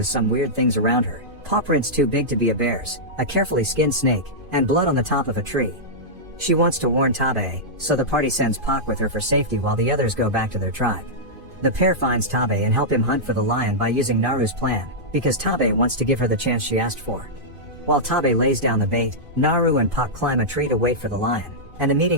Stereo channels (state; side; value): late; left; 2.5 ms